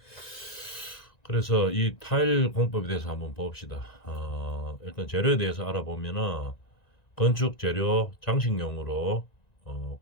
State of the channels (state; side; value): late; right; 1.9 ms